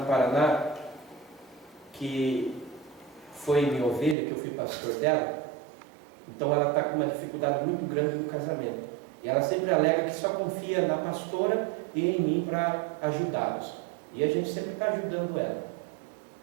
Paraná que foi minha ovelha, que eu fui pastor dela. Então ela está com uma dificuldade muito grande no casamento. E ela sempre alega que só confia na pastora e em mim para ajudá-los. E a gente sempre está ajudando ela.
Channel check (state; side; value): drops out; left; at 4.2 s